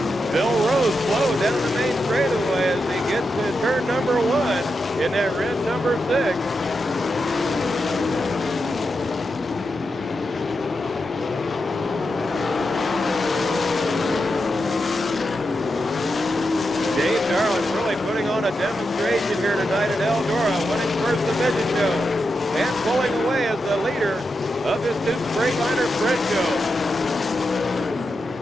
Bill Rose slowed down the main straightaway as he gets to turn number 1 in that red number 6. Dave Darlin really putting on a demonstration here tonight at Eldora, winning first the midget show and pulling away as the leader of this new Freightliner sprint show.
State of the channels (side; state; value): both; normal; correlation 0.87